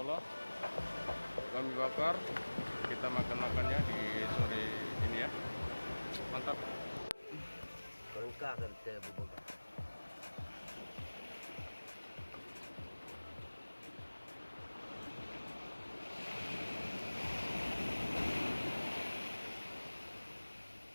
kami bakar, kita makan-makannya di sore ini ya. Mantap. Lengkap kita bubur.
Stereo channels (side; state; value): both; inverted; correlation -1.00